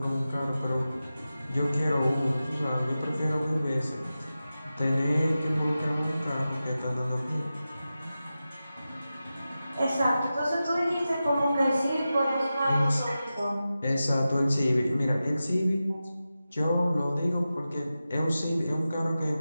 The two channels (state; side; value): inverted; both; correlation -0.93